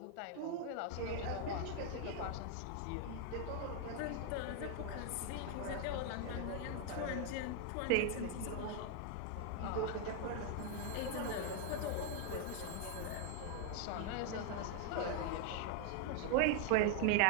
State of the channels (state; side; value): different; both; correlation 0.00